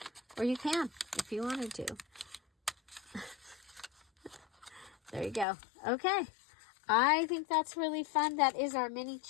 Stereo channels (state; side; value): drops out; right; at 5.5 s